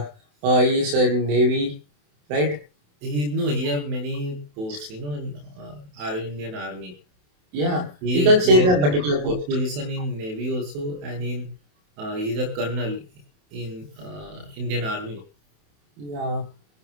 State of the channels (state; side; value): late; left; 27 ms